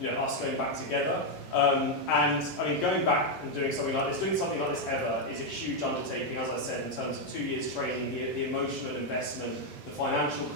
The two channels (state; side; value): normal; both; correlation 0.02